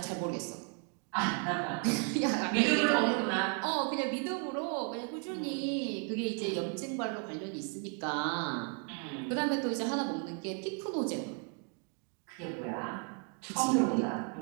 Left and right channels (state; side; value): quieter; left; 37.3 dB